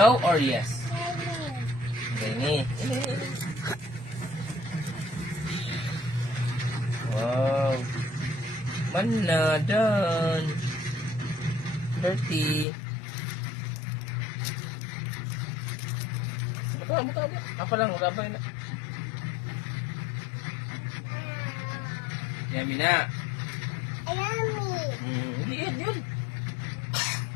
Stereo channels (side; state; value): right; drops out; at 12.7 s